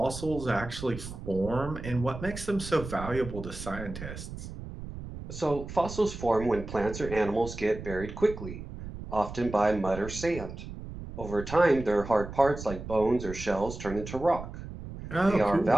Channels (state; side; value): noise; right; rumble, 10 dB below the sound